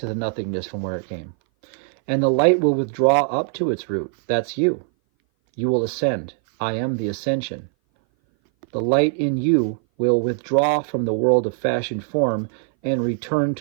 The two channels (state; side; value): silent; left; 59 dB below the other